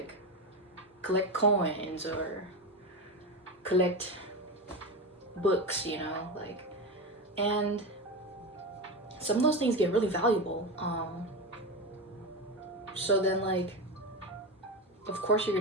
collect coins, or collect books, you know, like, and some of those things get really valuable. So then like, of course you're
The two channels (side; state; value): both; normal; correlation 0.19